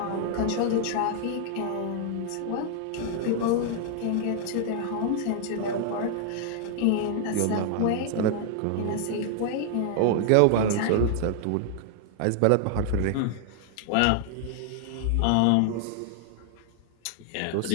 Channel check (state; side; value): different; both; correlation 0.00